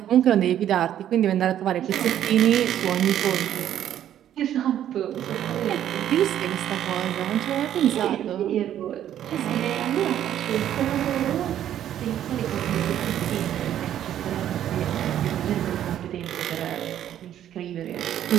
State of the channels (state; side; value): quieter; left; 11.0 dB